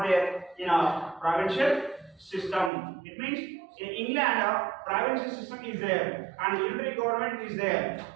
there in a provincial system. It means in England, provincial system is there and unitary government is there,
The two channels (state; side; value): drops out; left; at 2.7 s